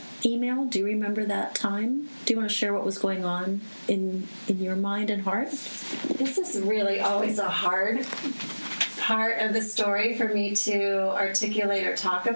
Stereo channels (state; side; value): inverted; both; correlation -1.00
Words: email? Do you remember that time? Do you want to share what was going on in your mind and heart? This is really always a hard part of the story for me to articulate or talk